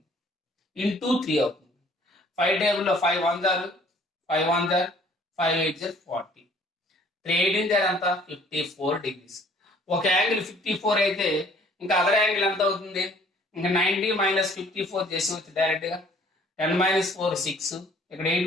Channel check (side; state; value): both; normal; correlation 0.57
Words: ఇంటూ 3 అవుతుంది. 5 టేబుల్లో 5 1 జారు, 5 1 జారు, 5 8 జారు 40, 3 18 జారు అంత 54 డిగ్రీస్. ఒక యాంగిల్ 54 అయితే ఇంకా అదర్ యాంగిల్ ఎంత అవుతుంది? ఇంకా 90 మైనస్ 54 చేసి డైరెక్ట్ గా 10 మైనస్ 4 6, ఇక్కడ 8